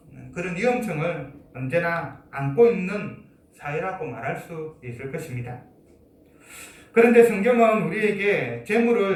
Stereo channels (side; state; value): both; identical; correlation 1.00